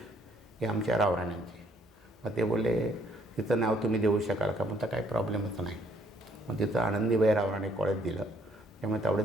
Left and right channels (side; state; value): both; normal; correlation 0.65